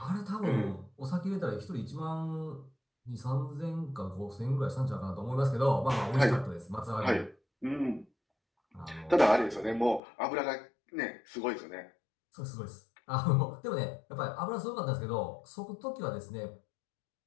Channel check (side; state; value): right; drops out; at 10.0 s